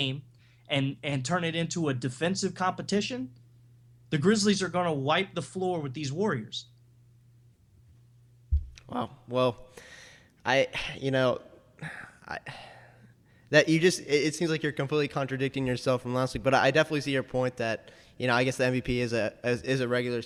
and turn it into a defensive competition, the Grizzlies are going to wipe the floor with these Warriors. Wow. Well, it seems like you're completely contradicting yourself from last week, but I definitely see your point that, I guess the MVP is a regular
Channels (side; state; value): both; identical; correlation 1.00